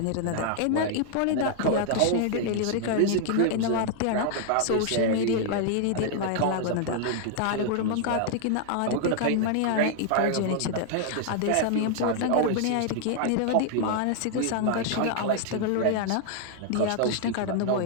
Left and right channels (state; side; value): different; both; correlation 0.00